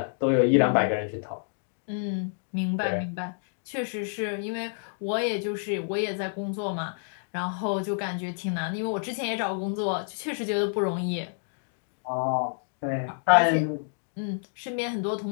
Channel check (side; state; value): right; silent; digital silence